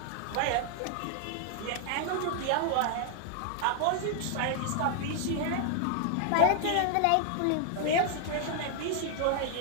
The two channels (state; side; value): different; both; correlation 0.00